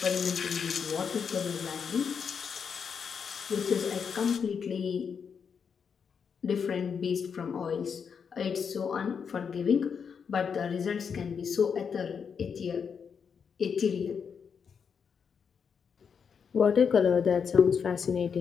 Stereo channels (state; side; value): quieter; right; 6.6 dB